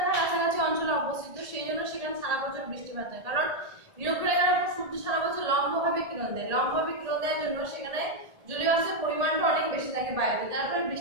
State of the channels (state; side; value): late; left; 1.7 ms